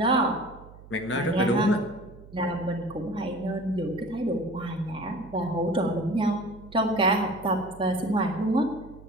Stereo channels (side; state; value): right; noise; hum, 19 dB below the sound